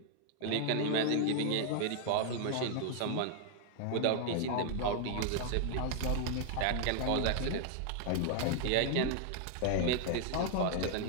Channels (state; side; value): different; both; correlation 0.00